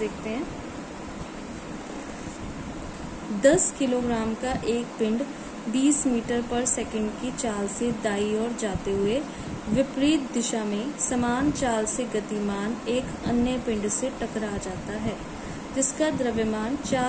हैं। 10 किलोग्राम का एक पिंड 20 मीटर पर सेकंड की चाल से दाईं ओर जाते हुए विपरीत दिशा में समान चाल से गतिमान एक अन्य पिंड से टकरा जाता है, जिसका द्रव्यमान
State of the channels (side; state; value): both; identical; correlation 1.00